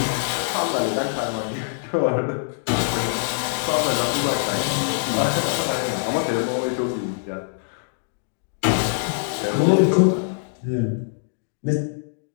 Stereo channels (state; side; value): silent; right; digital silence